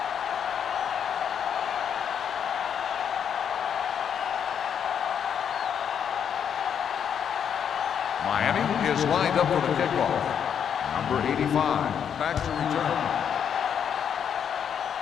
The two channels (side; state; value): right; quieter; 8.1 dB